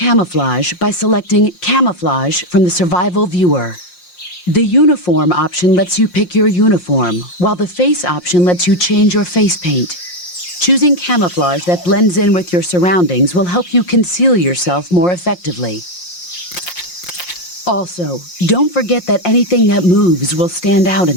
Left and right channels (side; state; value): right; late; 5.6 ms